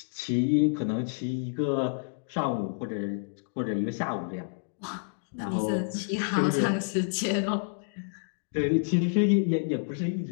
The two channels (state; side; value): silent; right; digital silence